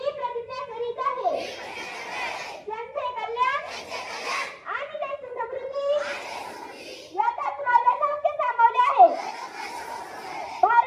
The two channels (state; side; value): identical; both; correlation 1.00